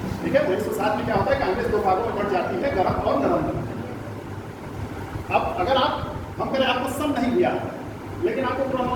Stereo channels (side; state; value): both; identical; correlation 1.00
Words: ठीक है, 1907 में क्या होता है, कांग्रेस 2 भागों में बढ़ जाती है, गरम और नरम। अब अगर हम कहें आपको सम नहीं दिया, लेकिन आपको